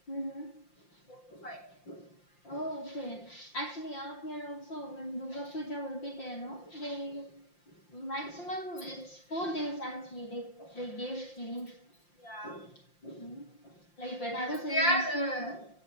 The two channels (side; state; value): right; late; 5.7 ms